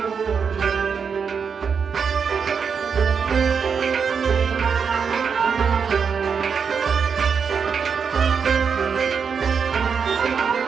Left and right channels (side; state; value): left; quieter; 6.2 dB